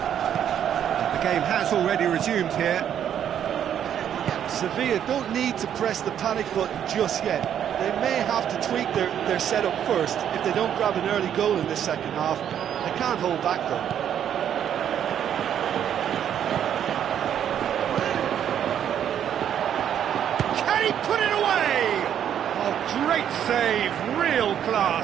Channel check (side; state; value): left; quieter; 9.5 dB